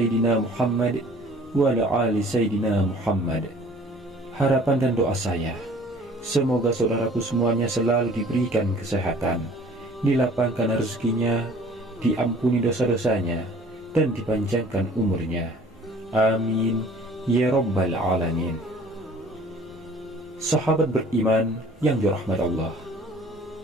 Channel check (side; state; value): both; normal; correlation 0.51